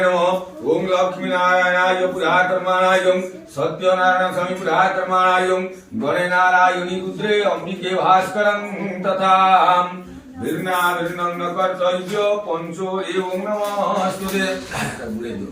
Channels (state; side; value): identical; both; correlation 1.00